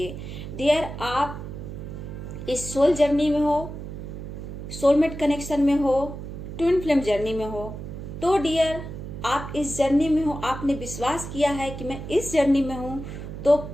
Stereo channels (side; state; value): right; noise; hum, 9 dB below the sound